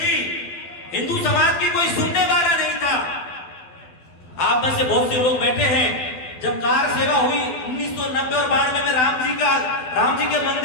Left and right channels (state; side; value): late; right; 12 ms